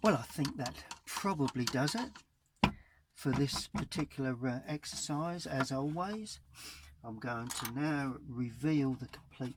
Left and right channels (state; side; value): identical; both; correlation 1.00